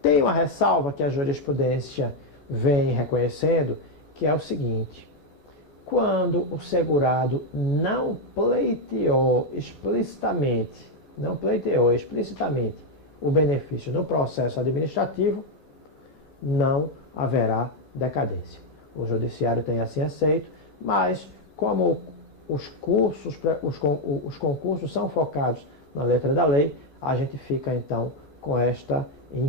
uma ressalva que a jurisprudência vem reconhecendo, que é o seguinte: quando o segurado não pleiteou explicitamente o benefício no processo administrativo, não haverá decadência. O judiciário tem assim aceito, mas como os concursos são focados na letra da lei, a gente fica então com esta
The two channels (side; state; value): right; late; 14 ms